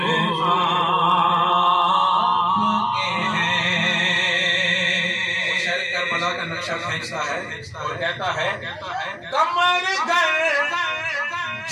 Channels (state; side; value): identical; both; correlation 1.00